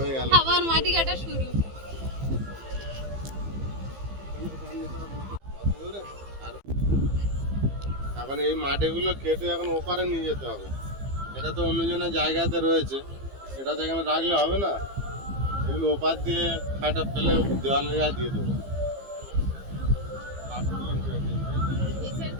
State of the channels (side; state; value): left; late; 15 ms